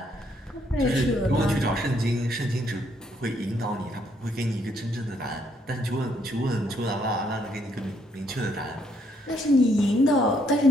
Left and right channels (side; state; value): both; normal; correlation 0.71